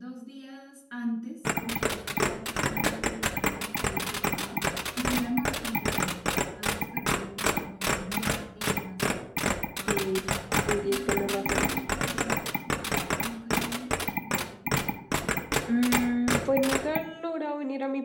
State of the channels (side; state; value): both; identical; correlation 1.00